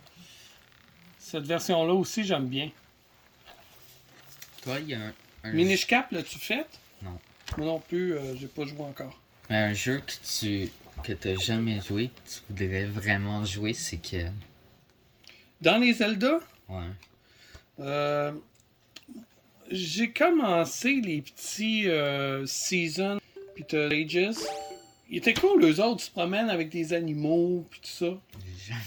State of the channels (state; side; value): identical; both; correlation 1.00